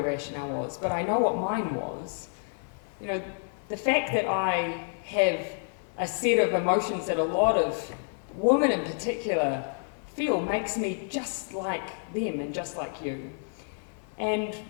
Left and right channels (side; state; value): right; silent; 58 dB below the other